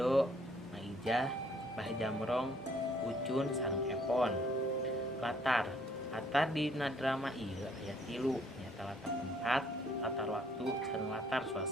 Maijah, Bah Jamrong, Ucun sareng Epon. Latar dina drama ieu aya 3 nyaeta latar tempat, latar waktu, sareng latar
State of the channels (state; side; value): normal; both; correlation 0.64